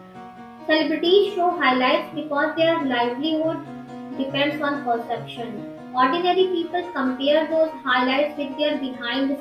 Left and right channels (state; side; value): identical; both; correlation 1.00